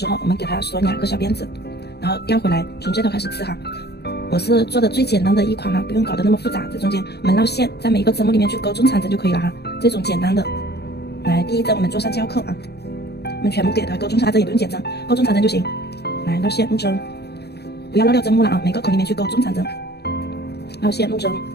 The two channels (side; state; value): right; late; 0.48 ms